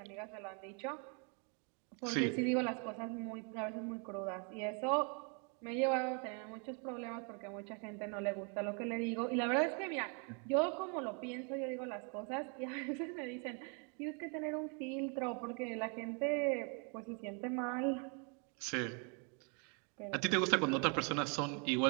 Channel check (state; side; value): quieter; left; 37.2 dB